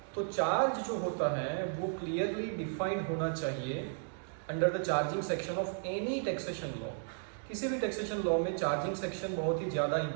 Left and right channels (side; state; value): left; silent; digital silence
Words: तो चार्ज जो होता है वो क्लियरली डिफाइंड होना चाहिए under the charging section of any taxation law. किसी भी टैक्सेशन लॉ में चार्जिंग सेक्शन बहुत ही ज़्यादा